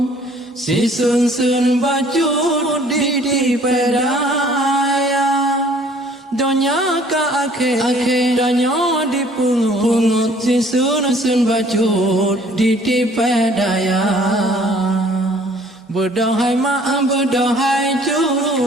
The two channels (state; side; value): normal; both; correlation 0.56